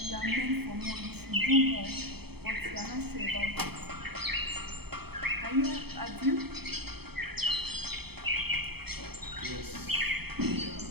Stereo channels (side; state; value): left; late; 0.97 ms